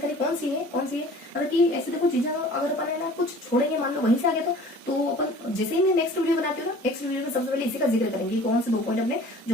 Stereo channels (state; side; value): normal; both; correlation 0.47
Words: कौन सी है मतलब कि ऐसे देखो चीजें अगर अपन है ना कुछ छोड़ेंगे, मान लो वहीं से आ गया तो अपन जैसे ही मैं नेक्स्ट वीडियो बनाती हूँ ना, नेक्स्ट वीडियो में सबसे पहले इसी का जिक्र करेंगे कौन से 2 पॉइंट अपने